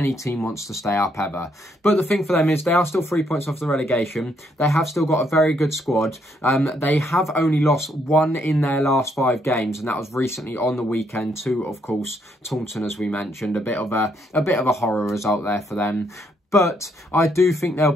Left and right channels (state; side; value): normal; both; correlation 0.73